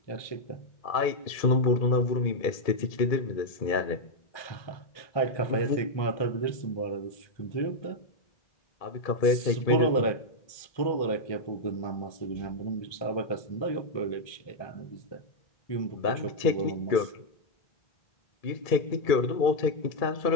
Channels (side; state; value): right; late; 2.3 ms